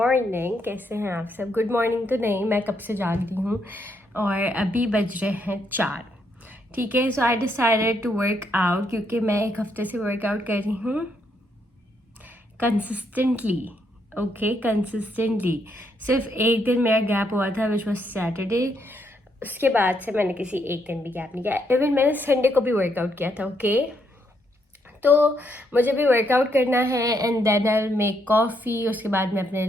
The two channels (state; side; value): normal; both; correlation 0.75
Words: कैसे हैं आप सब? गुड मॉर्निंग तो नहीं, मैं कब से जाग रही हूँ और अभी बज रहे हैं 4। ठीक है, so I decided to work out क्योंकि मैं एक हफ्ते से वर्कआउट कर रही हूँ कंसिस्टेंटली। Okay, consistently. सिर्फ एक दिन मेरा गैप हुआ था विच वॉज सैटरडे। उसके बाद से मैंने किसी एक दिन भी गैप नहीं किया। इवन मैंने संडे को भी वर्कआउट किया था। ओके, तो मुझे भी वर्कआउट करना है and then I will make coffee. उसके बाद मैं अपने